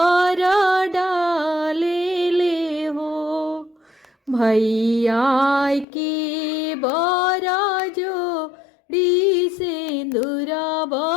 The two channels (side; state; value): right; drops out; at 5.9 s